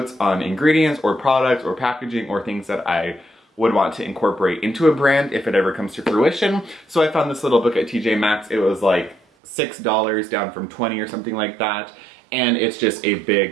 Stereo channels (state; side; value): drops out; left; at 9.2 s